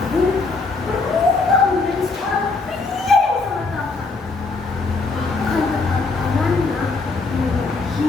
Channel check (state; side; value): quieter; right; 3.9 dB